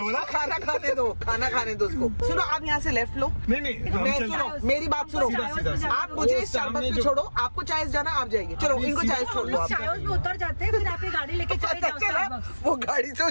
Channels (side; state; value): both; inverted; correlation -1.00